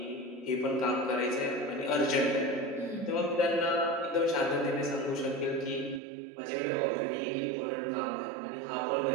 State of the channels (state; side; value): drops out; left; at 6.0 s